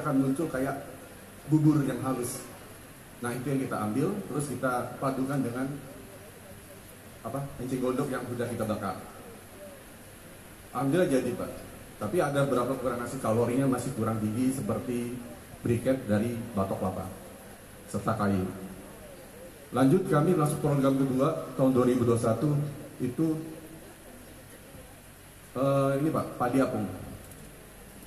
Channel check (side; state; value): both; identical; correlation 1.00